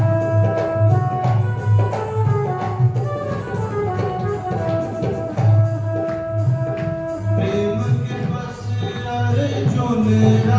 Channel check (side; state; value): both; identical; correlation 1.00